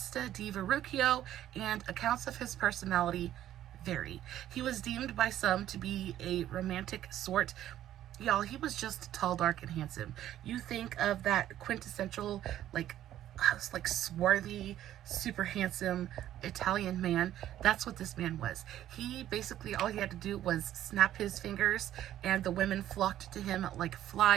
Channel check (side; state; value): left; quieter; 12.3 dB